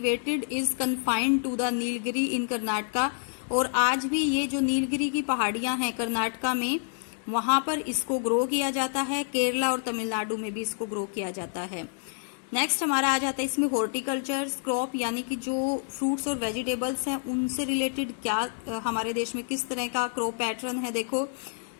is confined to the Nilgiri in Karnataka, और आज भी ये जो नीलगिरी की पहाड़ियां हैं कर्नाटका में, वहां पर इसको ग्रो किया जाता है। केरला और तमिलनाडु में भी इसको ग्रो किया जाता है। नेक्स्ट हमारा आ जाता है इसमें हॉर्टिकल्चर क्रॉप, यानी कि जो फ्रूट्स और वेजिटेबल्स हैं उनसे रिलेटेड क्या हमारे देश में किस तरह का क्रॉप पैटर्न है। देखो,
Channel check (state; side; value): silent; right; digital silence